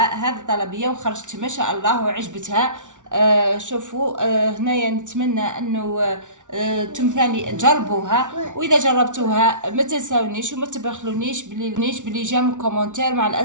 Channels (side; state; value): left; late; 0.87 ms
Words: هذه الطلبية وخرجت ما شاء الله وعجبتها. شوفوا، هنايا نتمنى انه ثاني تجربوها، واذا جربتوها ما تنساونيش وما تبخلونيش بلي جام كومنتير مع